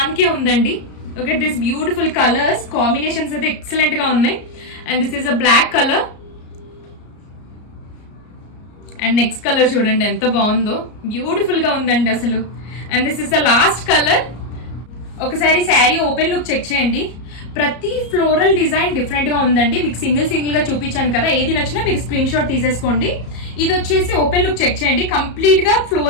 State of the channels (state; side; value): late; right; 34 ms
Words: ఉందండి. Look at this beautiful colours, combinations అయితే ఎక్సలెంట్ గా ఉన్నాయి. And this is a black colour and next colour చూడండి ఎంత బాగుందో, బ్యూటిఫుల్ గా ఉందండి అసలు. And this is the last colour. ఒకసారి శారీ ఓపెన్ లుక్ చెక్ చేయండి, ప్రతి ఫ్లోరల్ డిజైన్ డిఫరెంట్ గా ఉందండి. మీకు సింగిల్ గా చూపించాను కదా, ఏది నచ్చినా మీరు స్క్రీన్ షాట్ తీసేసుకోండి. ఇది వచ్చేసి ఓపెన్ లుక్ చెక్ చేయండి, కంప్లీట్ గా